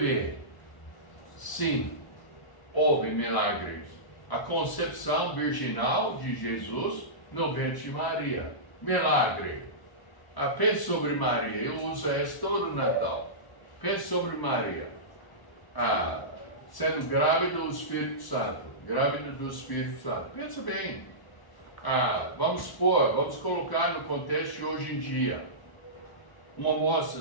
Sim, houve milagres. A concepção virginal de Jesus no ventre de Maria. Milagre. Pense sobre Maria. Eu uso isso todo o Natal. Pense sobre Maria. Sendo grávida do Espírito Santo. Grávida do Espírito Santo. Pensa bem. Vamos colocar no contexto de hoje em dia. Uma moça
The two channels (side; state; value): right; late; 1.0 ms